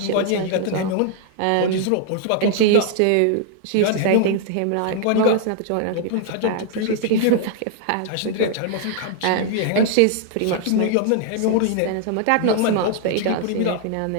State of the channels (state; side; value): different; both; correlation 0.00